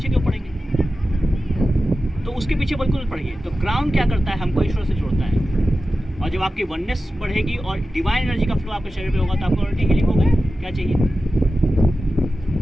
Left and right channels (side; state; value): both; normal; correlation 0.93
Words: क्यों पड़ेंगे? तो उसके पीछे बिल्कुल पड़िए। तो क्राउन क्या करता है, हमको ईश्वर से जोड़ता है। और जब आपकी वननेस बढ़ेगी और डिवाइन एनर्जी का फ्लो आपके शरीर पे होगा तो आपको ऑलरेडी हीलिंग हो गई। क्या चाहिए?